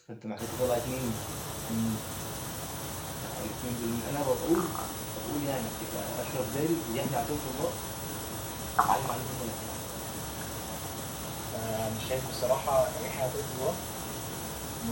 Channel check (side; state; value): both; identical; correlation 1.00